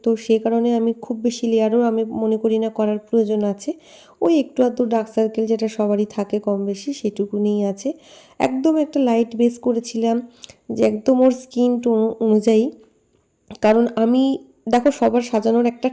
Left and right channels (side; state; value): both; identical; correlation 1.00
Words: তো সেই কারণে আমি খুব বেশি লেয়ারও আমি মনে করি না করার প্রয়োজন আছে। ওই একটু আধটু ডার্ক সার্কেল যেটা সবারই থাকে কম বেশি সেটুকুনিই আছে। একদম একটা লাইট বেস করেছিলাম, যে একদম ওর স্কিন টোন অনুযায়ী। কারণ আমি, দেখো সবার সাজানোর একটা